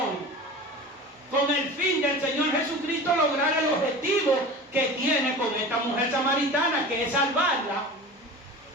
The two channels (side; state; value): both; normal; correlation 0.35